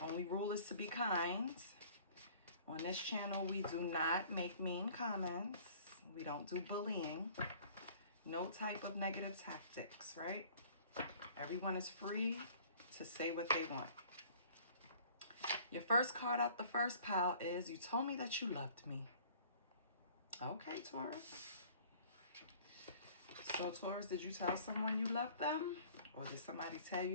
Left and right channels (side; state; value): both; inverted; correlation -0.51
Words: Only rule is to be kind. On this channel, we do not make mean comments. We don't do bullying. No type of negative tactics, right? Everyone is free to say what they want. Your first card out the first pile is, you told me that you loved me. Okay, Taurus. So, Taurus, did you tell someone you loved them? Or did somebody tell